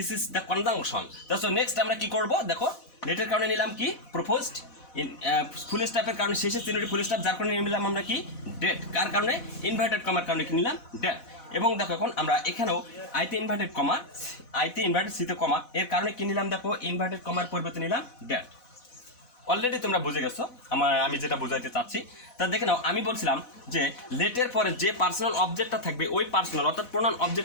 is the conjunction. তো next আমরা কি করব দেখো, লেটের কারণে নিলাম কি proposed, ফুল স্টপের কারণে শেষে তিনটি ফুল স্টপ, যার কারণে নিলাম আমরা কি ডেট, কার কারণে ইনভার্টেড কমার কারণে কি নিলাম ডেট। এবং দেখো এখন আমরা এখানেও আইতে ইনভার্টেড কমা, আইতে ইনভার্টেড সিতে কমা, এর কারণে কি নিলাম দেখো ইনভার্টেড কমার পরিবর্তে নিলাম ডেট। অলরেডি তোমরা বুঝে গেছো আমি যেটা বোঝাইতে চাচ্ছি। তা দেখে নাও আমি বলছিলাম যে লেটের পরে যে পার্সোনাল অবজেক্টটা থাকবে ওই পার্সোনাল অর্থাৎ প্রোনাউন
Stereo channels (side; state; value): right; late; 4.1 ms